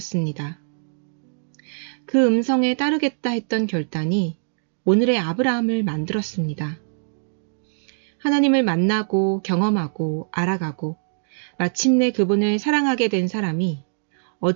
그 음성에 따르겠다 했던 결단이 오늘의 아브라함을 만들었습니다. 하나님을 만나고 경험하고 알아가고 마침내 그분을 사랑하게 된 사람이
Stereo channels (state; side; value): silent; left; digital silence